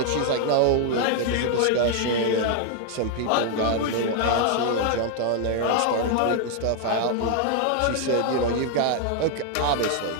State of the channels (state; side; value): different; both; correlation 0.00